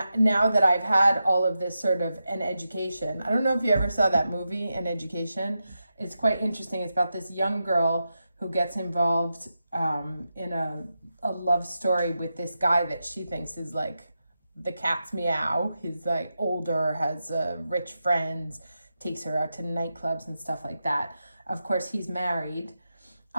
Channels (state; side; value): inverted; both; correlation -0.89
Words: I've had all of this sort of an education, I don't know if you ever saw that movie, An Education. It's quite interesting. It's about this young girl who gets involved in a love story with this guy that she thinks is like the cat's meow. He's like older, has rich friends, takes her out to nightclubs and stuff like that. Of course, he's married.